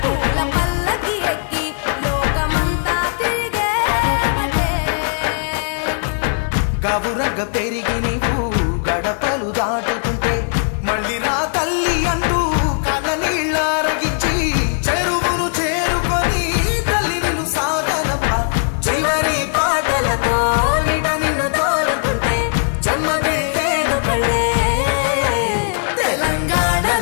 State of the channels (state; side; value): silent; right; 61 dB below the other